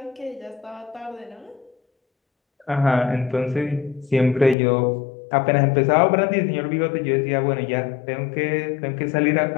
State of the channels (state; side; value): drops out; right; at 4.5 s